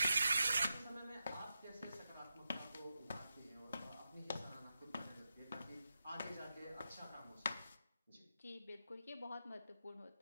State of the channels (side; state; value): both; inverted; correlation -0.88